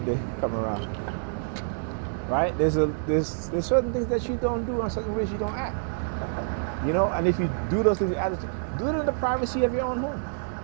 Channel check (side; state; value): left; silent; digital silence